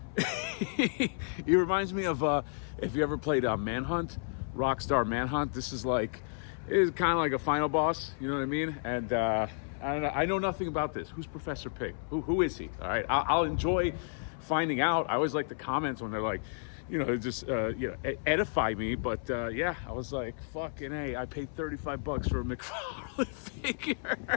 He reminds me of, if you ever played Manhunt, Rockstar Manhunt. This is kind of like a final boss. You know what I mean? And I don't know. I know nothing about this. Who's Professor Pyg? Who is he? All right. I'll enjoy finding out. I always like the comments when they're like, edify me. But yeah, I was like, fucking A, I paid $35 for a McFarlane figure.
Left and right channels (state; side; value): silent; right; 56 dB below the other